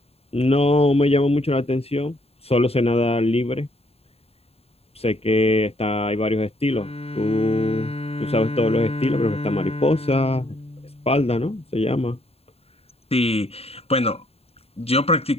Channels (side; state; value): right; late; 0.29 ms